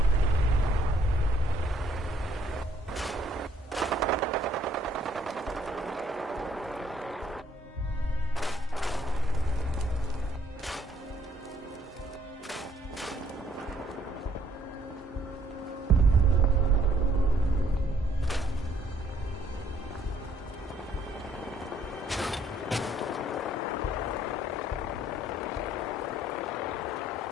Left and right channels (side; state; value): both; normal; correlation 0.65